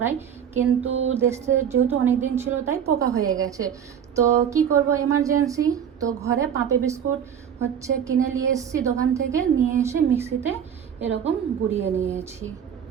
কিন্তু দেশে যেহেতু অনেক দিন ছিল তাই পোকা হয়ে গেছে। তো কি করব এমার্জেন্সি, তো ঘরে পাপে বিস্কুট কিনে নিয়ে এসেছি দোকান থেকে, নিয়ে এসে মিক্সিতে এরকম গুঁড়িয়ে নিয়েছি।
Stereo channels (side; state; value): left; quieter; 8.5 dB